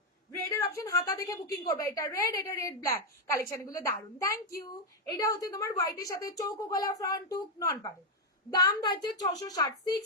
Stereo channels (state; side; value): normal; both; correlation 0.02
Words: রেড এর অপশন, হাতা দেখে বুকিং করবে। এটা রেড ব্ল্যাক, কালেকশন গুলো দারুন, থ্যাংক ইউ। এটা হচ্ছে তোমার হোয়াইটের সাথে চৌকো গলা, ফ্রন্ট টুক নন পারে। দাম থাকছে 660,